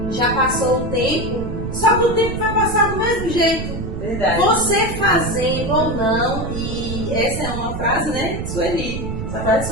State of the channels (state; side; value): noise; right; rumble, 6 dB below the sound